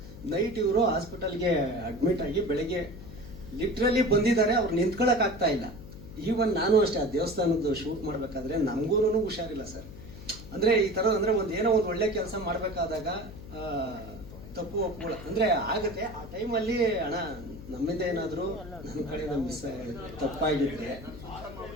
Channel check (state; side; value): noise; left; hum, 14 dB below the sound